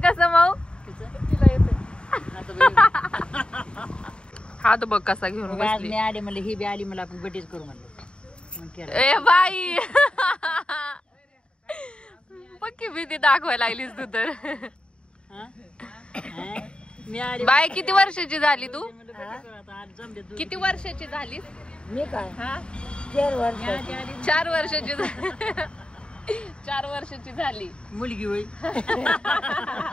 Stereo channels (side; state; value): right; late; 0.053 ms